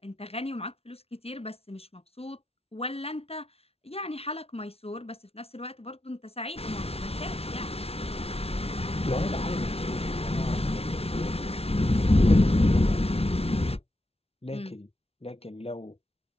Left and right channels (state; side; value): late; right; 0.29 ms